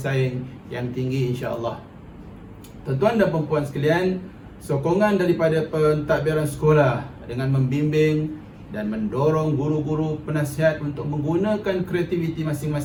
yang tinggi, insya-Allah. Tuan-tuan dan puan-puan sekalian, sokongan daripada pentadbiran sekolah dengan membimbing dan mendorong guru-guru penasihat untuk menggunakan kreativiti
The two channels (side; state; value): both; identical; correlation 1.00